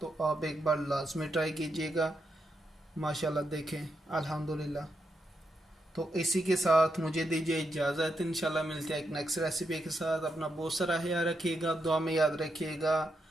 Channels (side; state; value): both; normal; correlation 0.83